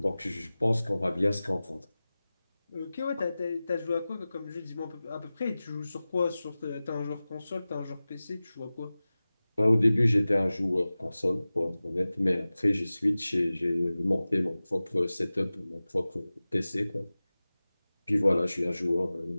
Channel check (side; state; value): both; inverted; correlation -0.97